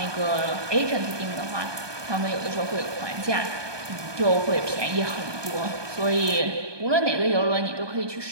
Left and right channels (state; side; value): late; left; 1.2 ms